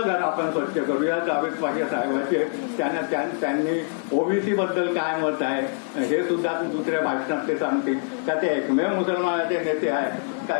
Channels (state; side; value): silent; right; 56 dB below the other